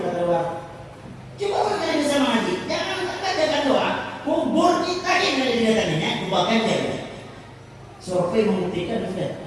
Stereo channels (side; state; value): both; identical; correlation 1.00